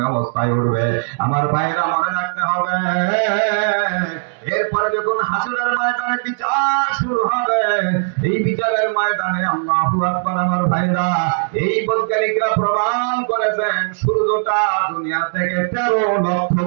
অবস্থায় উঠবে। আমার ভাইরা মনে রাখতে হবে, এরপরে যখন হাসরের ময়দানে বিচার শুরু হবে, এই বিচারের ময়দানে আল্লাহু আকবার। আমার ভাইরা, এই বৈজ্ঞানিকরা প্রমাণ করেছেন সূর্যটা দুনিয়া থেকে 13 লক্ষ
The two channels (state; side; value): silent; left; digital silence